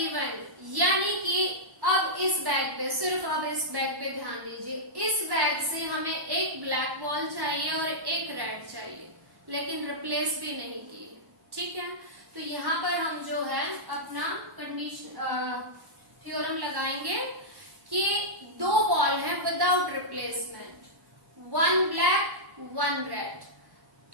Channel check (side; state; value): left; late; 1.1 ms